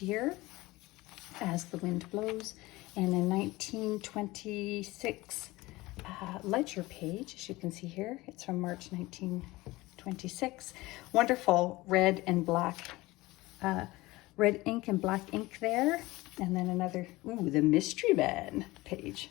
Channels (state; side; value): quieter; right; 20.1 dB